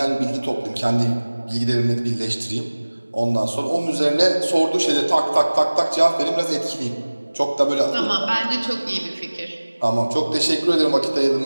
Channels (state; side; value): inverted; both; correlation -1.00